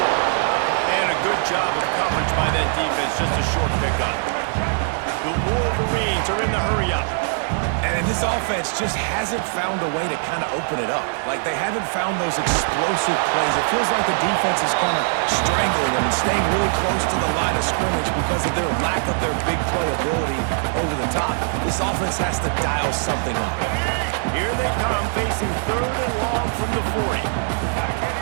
And a good job of coverage by that defense, just a short pickup. The Wolverines are in the hurry-up. And this offense just hasn't found a way to kind of open it up. Like, they haven't found those explosive plays. It feels like the defense is kind of strangling them and staying really close to the line of scrimmage because of their lack of their big play ability over the top. This offense has to dial something up. Here they come, facing 3rd and long from the 40.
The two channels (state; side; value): silent; left; digital silence